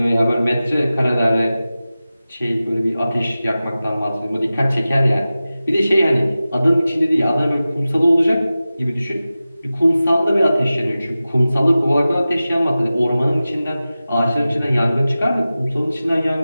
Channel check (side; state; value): both; inverted; correlation -0.95